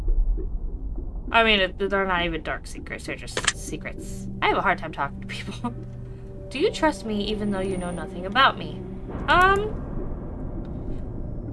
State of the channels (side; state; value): both; identical; correlation 1.00